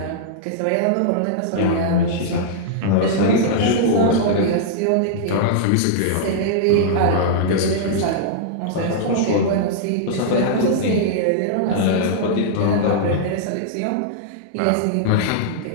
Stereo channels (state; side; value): different; both; correlation -0.02